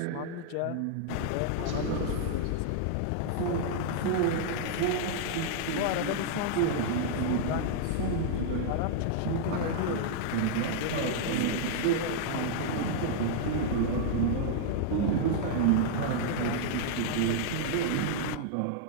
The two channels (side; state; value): both; different; correlation -0.01